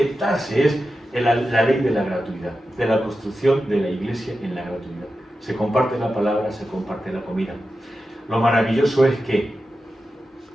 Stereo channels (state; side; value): normal; both; correlation 0.91